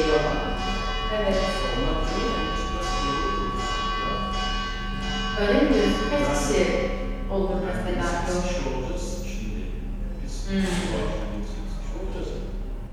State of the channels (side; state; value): both; identical; correlation 1.00